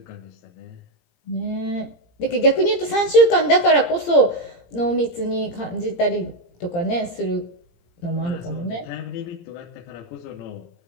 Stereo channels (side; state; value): right; late; 17 ms